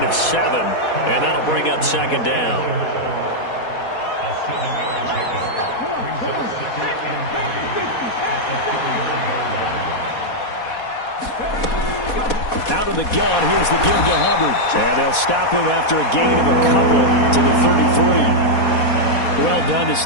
of 7, and that'll bring up 2nd down. Out of the gun, here's the give to Hubbard. And they'll stop him after a gain of a couple to the 33. Well done to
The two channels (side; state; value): right; late; 4.2 ms